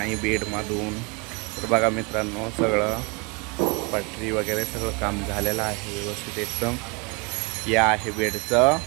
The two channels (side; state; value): left; quieter; 30.1 dB